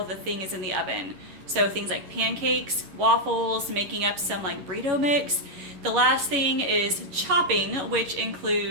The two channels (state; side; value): late; left; 11 ms